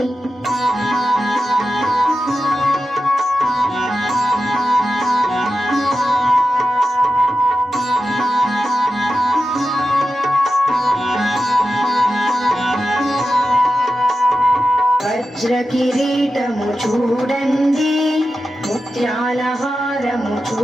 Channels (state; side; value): normal; both; correlation 0.91